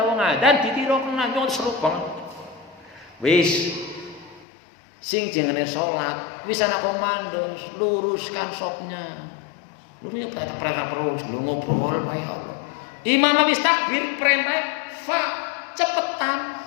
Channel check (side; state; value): right; drops out; at 4.5 s